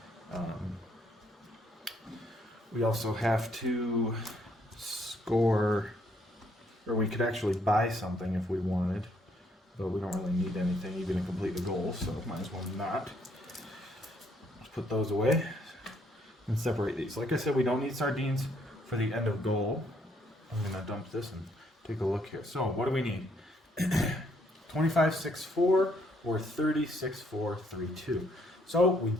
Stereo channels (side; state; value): both; normal; correlation 0.70